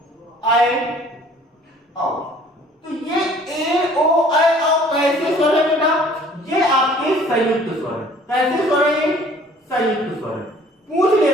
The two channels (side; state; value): both; normal; correlation 0.54